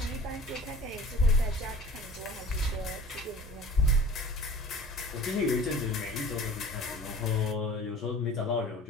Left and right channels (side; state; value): both; normal; correlation 0.44